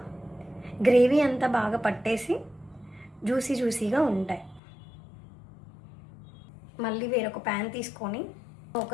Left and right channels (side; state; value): right; drops out; at 4.6 s